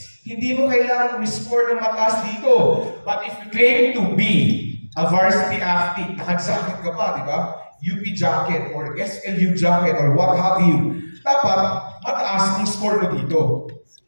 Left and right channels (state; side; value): inverted; both; correlation -1.00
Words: hindi mo kailangan score ng mataas dito. But if you claim to be a varsity athlete, nakajakit ka pa, di ba? UP jacket or SLU jacket or what have you. Dapat mataas ang score mo dito.